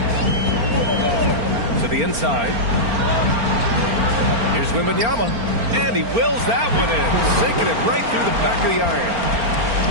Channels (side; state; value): left; late; 4.4 ms